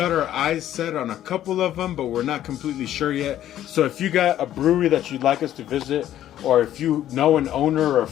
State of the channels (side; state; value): right; quieter; 12.0 dB